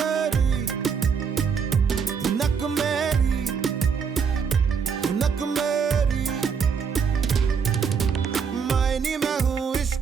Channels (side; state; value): left; quieter; 6.3 dB